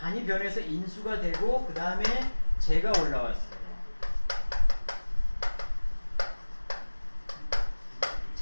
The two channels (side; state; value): both; inverted; correlation -1.00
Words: 변해서 인수가 되고 그 다음에 재가 올라왔어요.